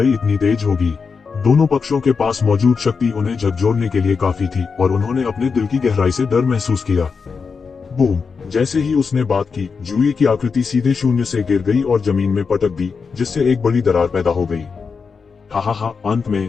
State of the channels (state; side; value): quieter; right; 5.3 dB